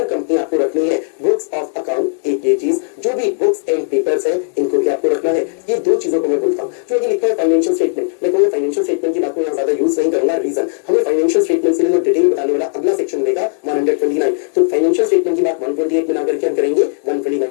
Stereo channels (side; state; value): right; silent; digital silence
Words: company आपको रखनी है books of account. एक ये चीज, जो भी बुक्स एंड पेपर्स है इनको भी आपको रखना है। ये दो चीजों को मैं बोलता हूँ। जो लिखा है फाइनेंशियल स्टेटमेंट, मैं कहूँगा फाइनेंशियल स्टेटमेंट की बात को यहाँ ज्यादा यूज नहीं करूंगा। रीजन, हमें फाइनेंशियल स्टेटमेंट से डिटेल बताने वाला अगला सेक्शन मिलेगा 129। तो फाइनेंशियल स्टेटमेंट की बात 128 में ना करके हम करेंगे